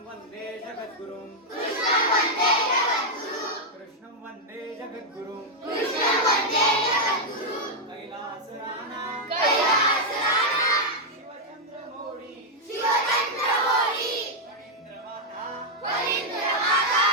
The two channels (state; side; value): normal; both; correlation -0.02